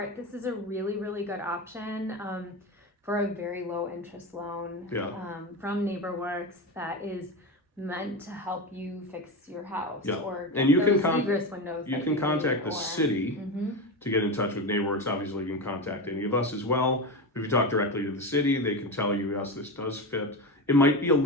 this is a really, really good option for a very low interest loan from NeighborWorks that is meant to help you fix your house Yeah. or And you can those egress windows. you that can need, contact the or- city Mhm. to get in touch with NeighborWorks. Obviously, you can contact any of us as well. If you talk directly to the city, they can tell you, yes, this does fit. It might be a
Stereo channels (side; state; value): both; normal; correlation 0.20